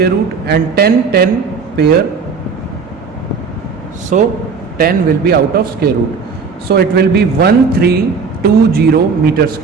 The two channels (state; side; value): quieter; left; 5.3 dB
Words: root and 10 pair, so 10 will be out of square root. So it will be 1320 meter